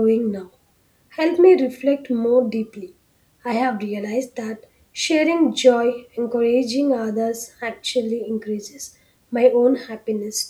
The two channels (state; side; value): identical; both; correlation 1.00